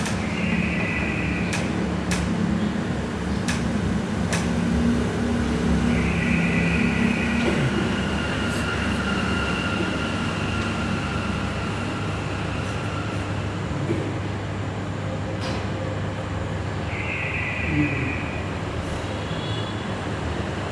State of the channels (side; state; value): both; identical; correlation 1.00